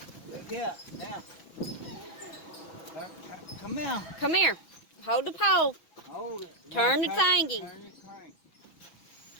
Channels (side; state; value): right; late; 6.0 ms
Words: Look here, now. Come here. Come here. Hold the pole. Hold it. Turn the Now, thingy. Turn the crank.